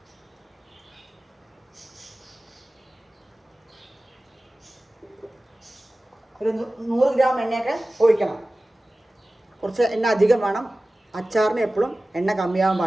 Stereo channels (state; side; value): normal; both; correlation 0.97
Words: ഒരു 100 ഗ്രാം എണ്ണയൊക്കെ ഒഴിക്കണം. കുറച്ച് എണ്ണ അധികം വേണം. അച്ചാറിന് എപ്പോഴും എണ്ണ കമ്മിയാവാൻ